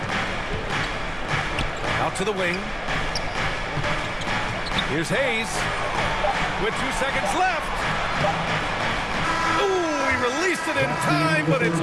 Out to the wing. Here's Hayes. With 2 seconds left. Ooh, he released it in time, but it's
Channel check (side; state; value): both; identical; correlation 1.00